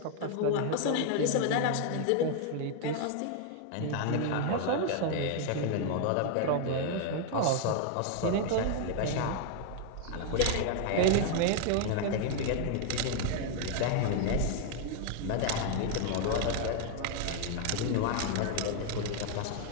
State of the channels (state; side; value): different; both; correlation 0.00